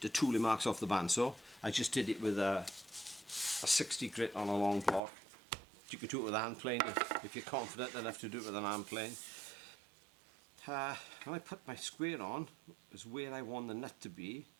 tooling marks off the bandsaw. I just did it with a 60 grit on a long block. You could do it with a hand plane if you're confident enough to do it with an hand plane. When I put my square on, is where I want the nut to be.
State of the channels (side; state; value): left; drops out; at 5.0 s